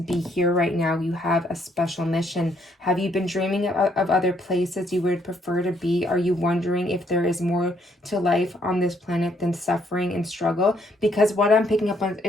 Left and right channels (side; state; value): both; normal; correlation 0.69